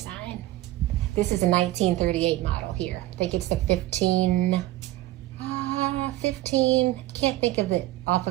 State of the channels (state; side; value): quieter; left; 16.5 dB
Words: This is a 1938 model here. I think it's the 15, can't think of it off